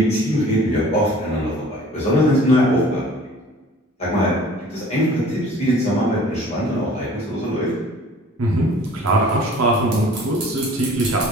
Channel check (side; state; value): both; normal; correlation 0.49